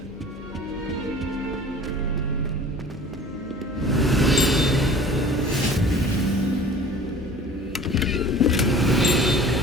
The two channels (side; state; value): both; normal; correlation 0.44